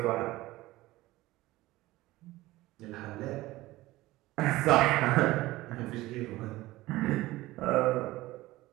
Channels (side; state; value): left; quieter; 18.1 dB